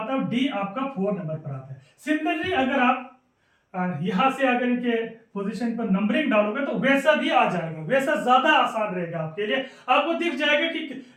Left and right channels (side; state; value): both; identical; correlation 1.00